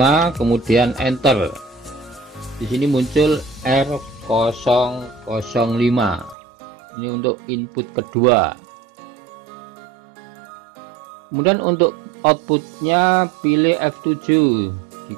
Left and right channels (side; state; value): left; drops out; at 6.4 s